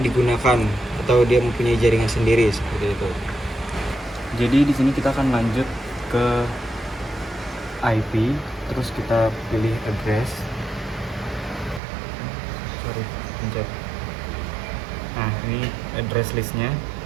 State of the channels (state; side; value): drops out; left; at 11.8 s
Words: atau dia mempunyai jaringan sendiri seperti itu. Jadi di sini kita akan lanjut ke IP, terus kita pilih address. Pencet. Nah, ini address listnya.